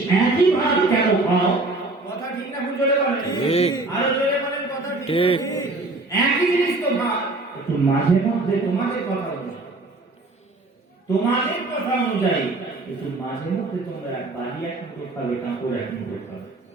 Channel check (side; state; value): left; quieter; 3.1 dB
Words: একই ভাত কেন খাও? কথা ঠিক না? ভুল জোরে বলেন, আরো জোরে বলেন। কথা ঠিক, একই জিনিস তো ভাত। একটু মাঝে মধ্যে তোমাদের কথা অনুযায়ী, তোমাদের কথা অনুযায়ী একটু মাঝে মধ্যে তোমরা বাড়ি এক মুঠো খাবে, কাপড় এক মুঠো খাবে।